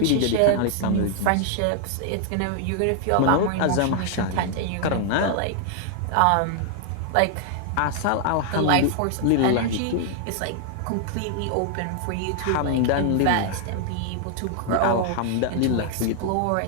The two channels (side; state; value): both; different; correlation 0.00